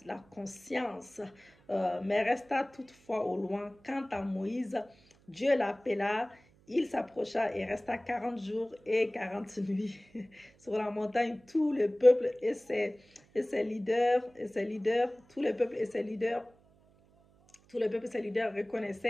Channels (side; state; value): right; noise; hum, 30 dB below the sound